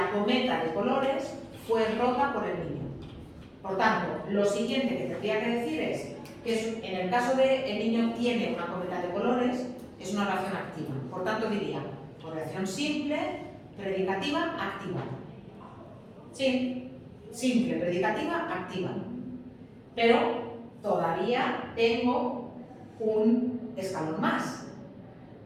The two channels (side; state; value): both; identical; correlation 1.00